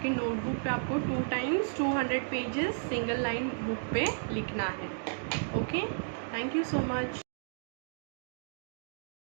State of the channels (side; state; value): left; silent; digital silence